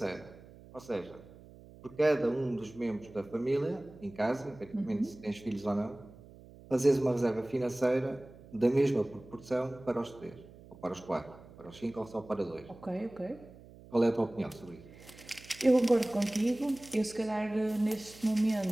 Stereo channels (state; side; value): noise; right; hum, 20 dB below the sound